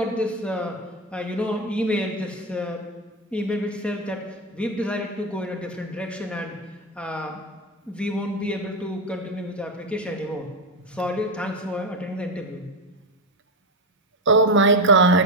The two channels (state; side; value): normal; both; correlation 0.13